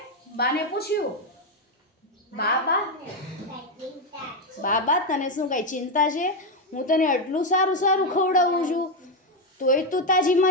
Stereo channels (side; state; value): both; normal; correlation 0.06